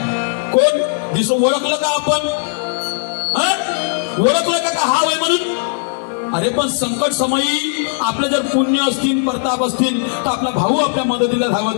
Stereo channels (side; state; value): right; silent; 64 dB below the other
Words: कोण दिसो ओळखलं का आपण? ओळखलं का हा वय म्हणून? अरे पण संकट समयी आपले जर पुण्य असतील, प्रताप असतील, तर आपला भाऊ आपल्या मदतीला